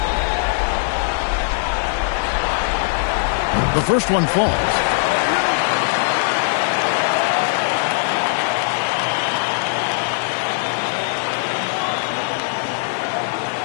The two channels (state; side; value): silent; right; digital silence